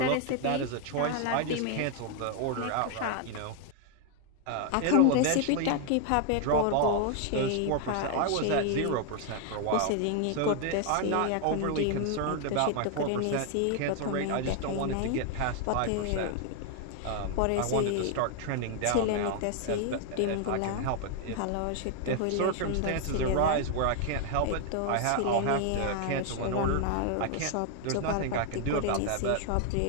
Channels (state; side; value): different; both; correlation 0.00